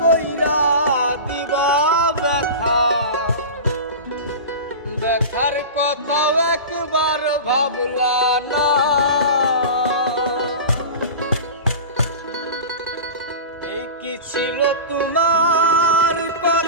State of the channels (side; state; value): both; inverted; correlation -0.30